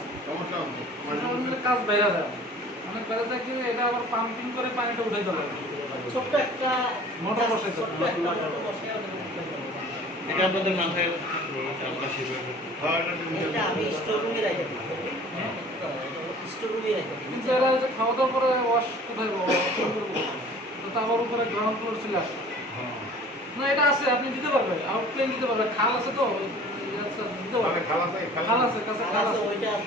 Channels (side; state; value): both; normal; correlation 0.47